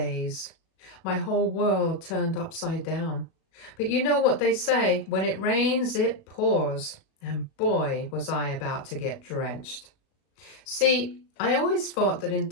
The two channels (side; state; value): right; late; 37 ms